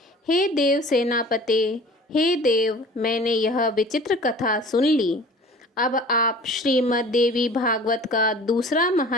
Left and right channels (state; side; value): normal; both; correlation 0.44